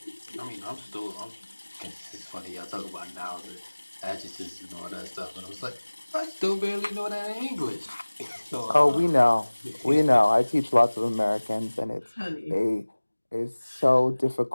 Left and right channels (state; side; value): inverted; both; correlation -1.00